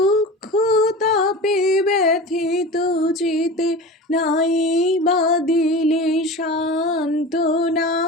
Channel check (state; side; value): normal; both; correlation 0.32